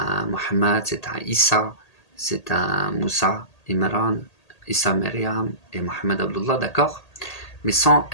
Mohammed, c'est un Issa, c'est un Moussa, Imran, Issa Maryam et Mohammed Abdullah, d'accord? mais sans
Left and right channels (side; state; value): right; late; 1.8 ms